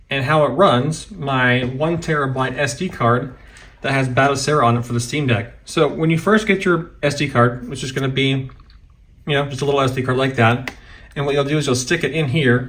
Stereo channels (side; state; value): both; identical; correlation 1.00